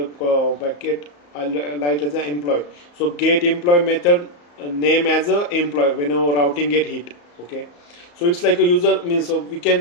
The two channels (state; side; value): late; right; 34 ms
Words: bracket I'll write as an employee. So get employee method name as a employee whenever routing get hit. Okay, so it's like a user means, so we